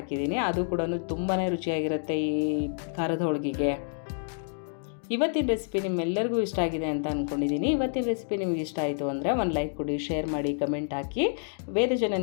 ಅದು ಕೂಡ ತುಂಬಾ ರುಚಿಯಾಗಿರುತ್ತೆ ಈ ಖಾರದ ಹೋಳಿಗೆಗೆ. ಇವತ್ತಿನ ರೆಸಿಪಿ ನಿಮ್ಮೆಲ್ಲರಿಗೂ ಇಷ್ಟ ಆಗಿದೆ ಅಂತ ಅಂದ್ಕೊಂಡಿದ್ದೀನಿ. ಇವತ್ತಿನ ರೆಸಿಪಿ ನಿಮಗೆ ಇಷ್ಟ ಆಯಿತು ಅಂದರೆ ಒಂದು ಲೈಕ್ ಕೊಡಿ, ಶೇರ್ ಮಾಡಿ, ಕಮೆಂಟ್ ಹಾಕಿ. ವೇದ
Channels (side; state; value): right; silent; digital silence